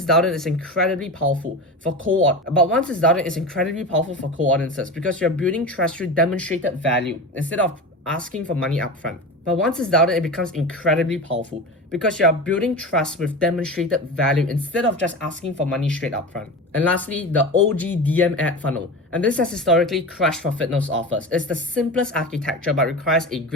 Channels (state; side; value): normal; both; correlation 0.28